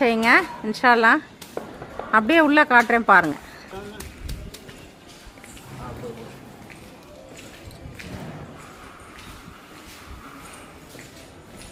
செய்யுங்க இன்ஷால்லா. அப்படியே உள்ளே காட்டுறேன் பாருங்கள்.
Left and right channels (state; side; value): identical; both; correlation 1.00